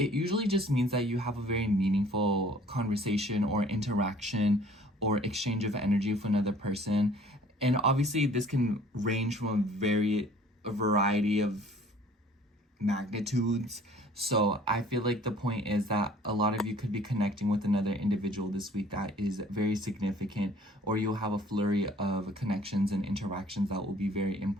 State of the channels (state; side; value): normal; both; correlation 0.53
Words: usually just means that you have a very meaningful conversation or interaction or exchange of energy with another person. And obviously this can range from a variety of magnitudes. So I feel like the point is that a lot of you could be connecting with another individual this week that is very significant, or you'll have a flurry of connections and interactions that will be very